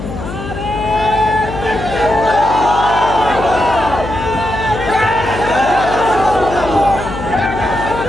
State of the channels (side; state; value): left; noise; hum, 9 dB below the sound